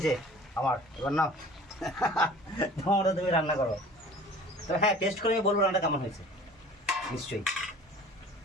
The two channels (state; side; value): normal; both; correlation 0.46